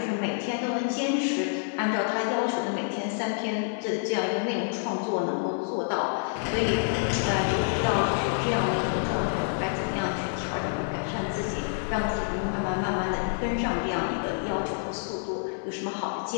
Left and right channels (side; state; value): right; silent; 58 dB below the other